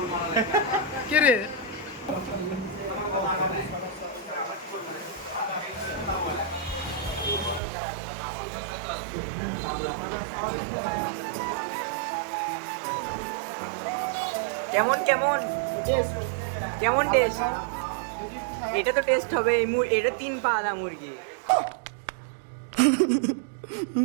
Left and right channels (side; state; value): left; drops out; at 7.6 s